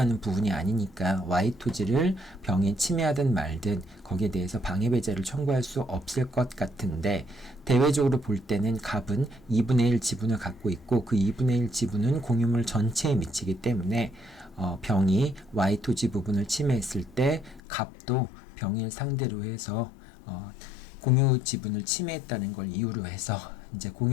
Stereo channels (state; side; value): drops out; right; at 17.6 s